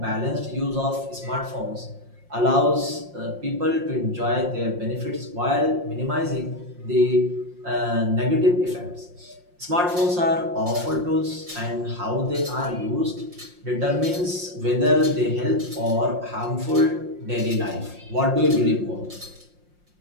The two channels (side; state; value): left; late; 5.6 ms